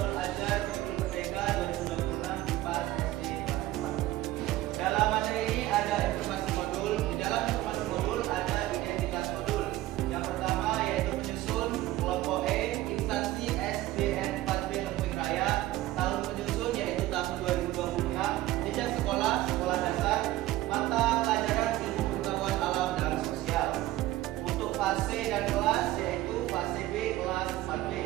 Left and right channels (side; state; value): left; quieter; 16.0 dB